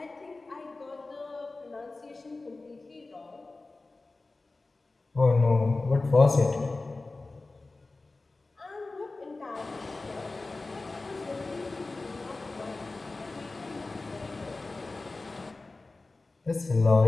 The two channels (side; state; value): right; quieter; 3.4 dB